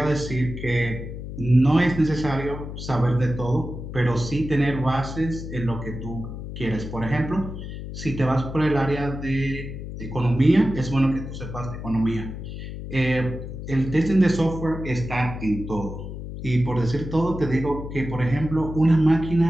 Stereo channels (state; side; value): noise; left; hum, 9 dB below the sound